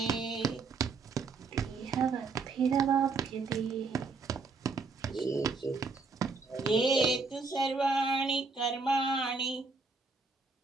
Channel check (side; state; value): left; quieter; 4.3 dB